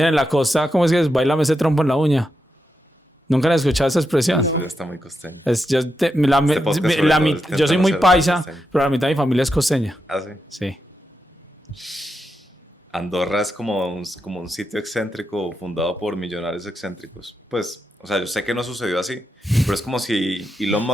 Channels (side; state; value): both; normal; correlation 0.86